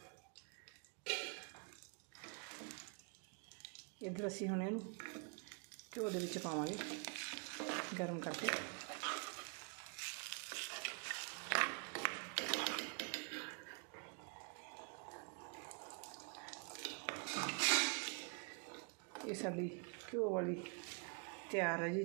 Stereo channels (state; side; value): quieter; left; 37.4 dB